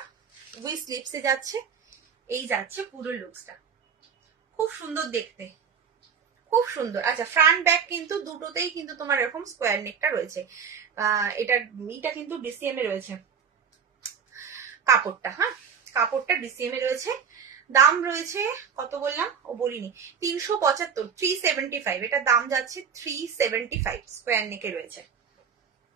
উই স্লিপসে যাচ্ছে, এই যাচ্ছে পুরো লুকসটা, খুব সুন্দর দেখতে, খুব সুন্দর। আচ্ছা, ফ্রন্ট ব্যাক কিন্তু দুটোতেই কিন্তু তোমার এরকম স্কোয়ার নেকটা রয়েছে, এটা কিন্তু ডিসিএম এ রয়েছে কাপড়টা, হ্যাঁ কাপড়টা ডিসিএম এ রয়েছে। দাম রয়েছে কত বললাম, ও বলিনি, 375, 375, এটা দাম যাচ্ছে 375, স্কোয়ার নেকে রয়েছে।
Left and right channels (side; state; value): left; quieter; 6.8 dB